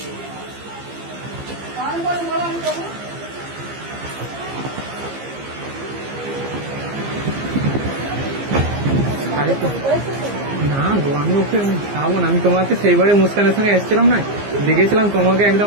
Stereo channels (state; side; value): late; left; 15 ms